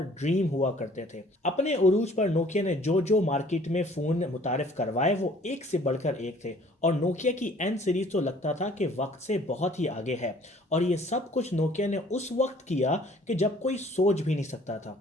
ड्रीम हुआ करते थे। अपने उरूज पर नोकिया ने जो जो मार्केट में फ़ोन मुतारिफ करवाए वो एक से बढ़कर एक थे और नोकिया की एन सीरीज तो लगता था कि वक्त से बहुत ही आगे है। और ये सब कुछ नोकिया ने उस वक्त किया कि जब कोई सोच भी नहीं सकता था।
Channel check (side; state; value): both; normal; correlation 0.55